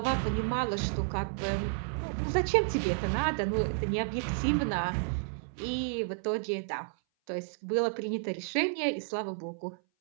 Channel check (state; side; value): silent; left; 57 dB below the other